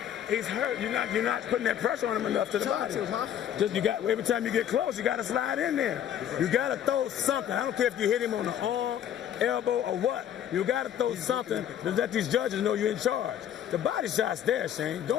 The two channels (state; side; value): quieter; right; 10.1 dB